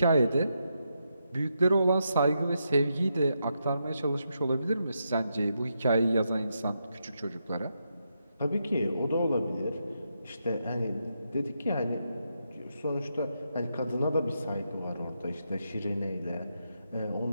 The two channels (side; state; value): both; inverted; correlation -0.83